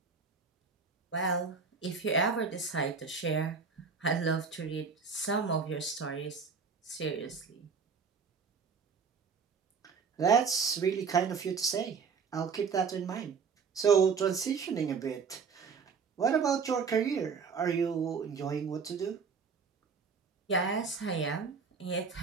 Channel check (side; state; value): left; quieter; 5.5 dB